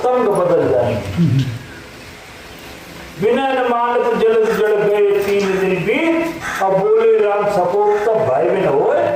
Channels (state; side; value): identical; both; correlation 1.00